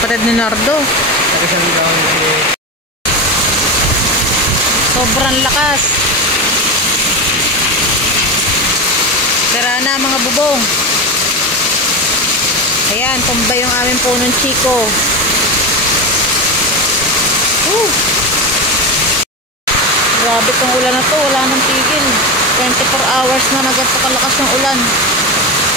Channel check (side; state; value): both; normal; correlation 0.19